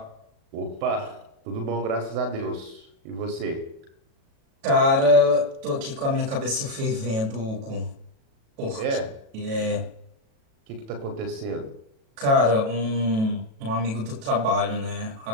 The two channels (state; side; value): late; left; 36 ms